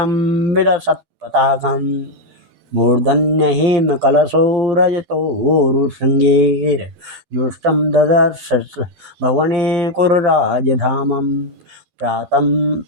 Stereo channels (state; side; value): late; left; 12 ms